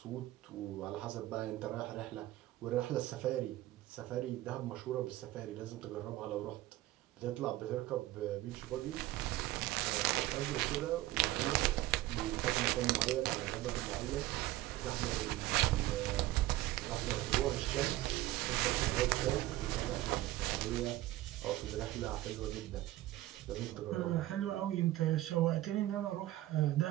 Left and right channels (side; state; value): left; quieter; 16.2 dB